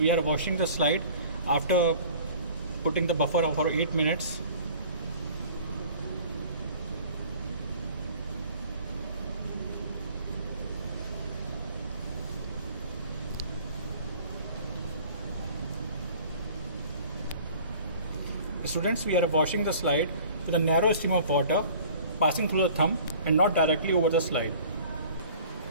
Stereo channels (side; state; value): both; inverted; correlation -0.48